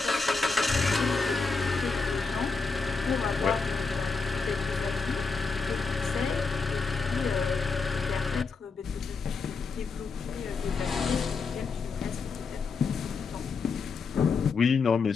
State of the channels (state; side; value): quieter; right; 4.6 dB